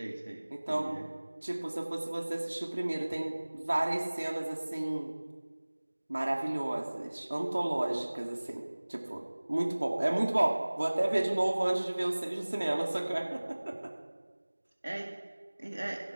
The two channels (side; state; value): both; inverted; correlation -1.00